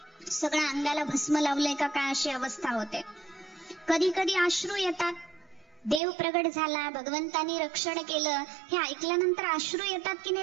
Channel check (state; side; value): drops out; left; at 6.0 s